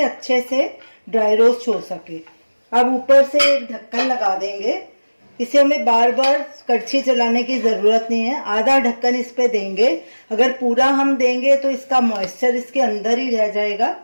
अच्छे से ड्राई रोस्ट हो सके। अब ऊपर से एक ढक्कन लगा देंगे। इसे हमें बार बार कड़छी चलाने की ज़रूरत नहीं है। आधा ढक्कन इस पे देंगे। अगर पूरा हम देंगे तो इसका मॉइस्चर इसके अंदर ही रह जाएगा।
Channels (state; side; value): inverted; both; correlation -1.00